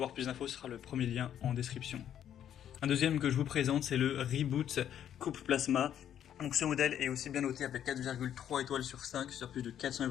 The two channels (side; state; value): right; quieter; 10.1 dB